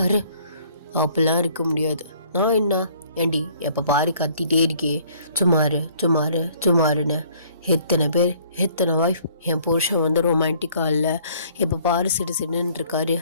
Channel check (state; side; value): inverted; both; correlation -0.59